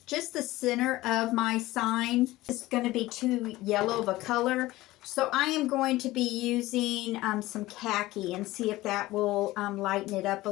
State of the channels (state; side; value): quieter; right; 17.9 dB